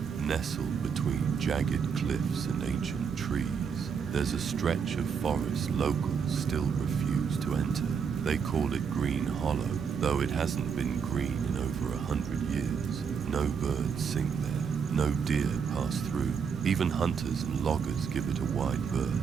nestled between jagged cliffs and ancient trees, there's a stretch of forest locals still refuse to enter. They call it Green Hollow, though it hasn't been green in over 100 years. No birds sing there, no deer pass through. Even hunters and loggers give it a wide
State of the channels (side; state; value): left; quieter; 6.5 dB